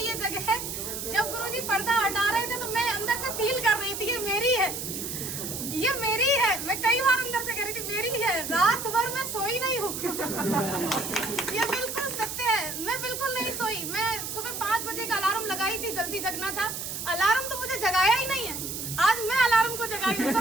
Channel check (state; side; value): noise; right; hiss, 6 dB below the sound